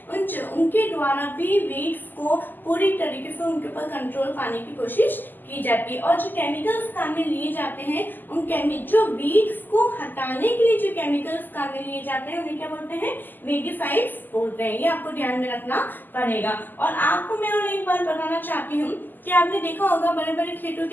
उनके द्वारा भी वीड्स को पूरी तरीके से उनके ऊपर कंट्रोल पाने की कोशिश की जाती है। और जो केमिकल्स काम में लिए जाते हैं, उन जो वीड्स को हटाने के लिए जो केमिकल्स काम में लिए जाते हैं उन्हें क्या बोलते हैं? वीडिसाइड्स बोलते हैं। ये आपको ध्यान में रखना पड़ेगा। और आपको मैं और एक बात बताना चाहती हूँ कि आपने देखा होगा बड़े बड़े खेतों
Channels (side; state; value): right; late; 0.088 ms